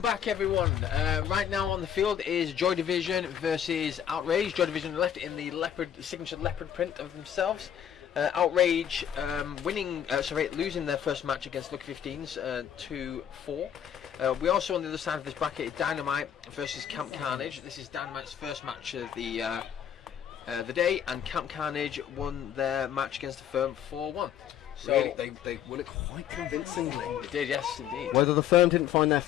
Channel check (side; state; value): right; quieter; 9.5 dB